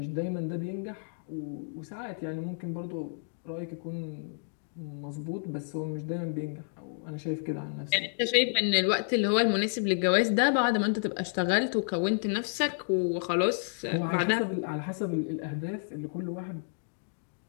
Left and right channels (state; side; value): silent; right; digital silence